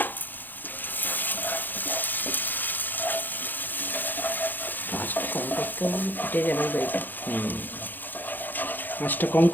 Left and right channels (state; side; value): late; right; 0.089 ms